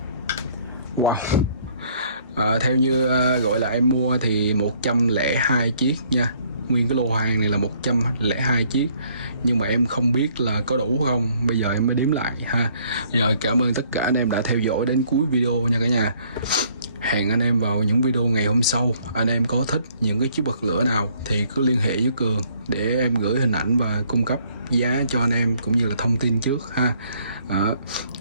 Wow. Theo như gọi là em mua thì 102 chiếc nha. Nguyên cái lô hàng này là 102 chiếc. Nhưng mà em không biết là có đủ không. Bây giờ em mới đếm lại ha. Rồi cảm ơn tất cả anh em đã theo dõi đến cuối video nha cả nhà. Hẹn anh em vào những video ngày hôm sau. Anh em có thích những cái chiếc bật lửa nào thì cứ liên hệ với Cường để em gửi hình ảnh và cung cấp giá cho anh em cũng như là thông tin trước ha.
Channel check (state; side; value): inverted; both; correlation -0.63